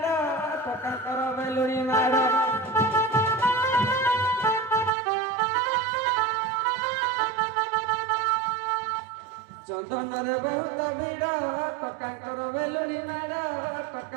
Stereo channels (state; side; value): drops out; left; at 4.9 s